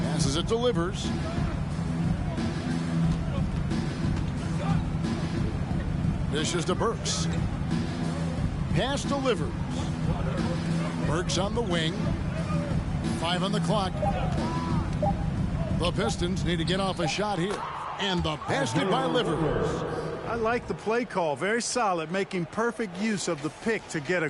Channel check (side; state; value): both; identical; correlation 1.00